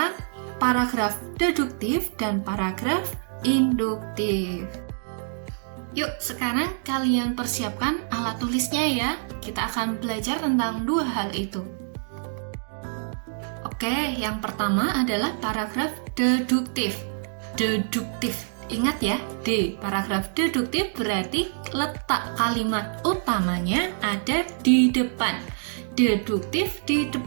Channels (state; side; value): silent; left; digital silence